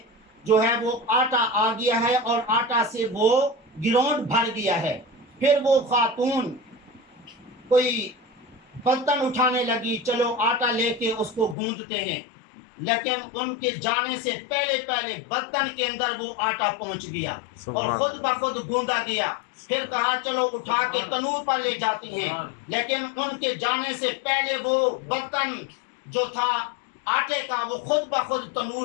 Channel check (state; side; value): drops out; right; at 11.6 s